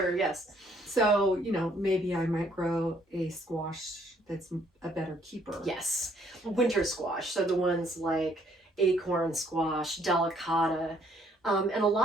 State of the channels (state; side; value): normal; both; correlation 0.65